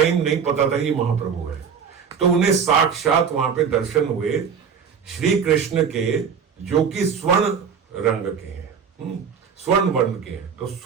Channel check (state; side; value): quieter; left; 6.7 dB